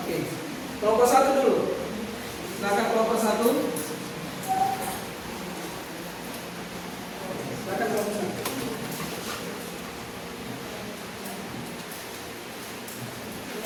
Kelompok 1 dulu. Silakan kelompok 1. Silakan kelompok 1.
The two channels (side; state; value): both; identical; correlation 1.00